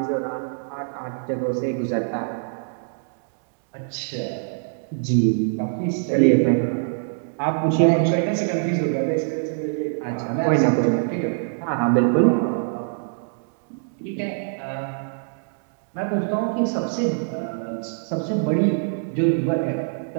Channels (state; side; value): silent; left; digital silence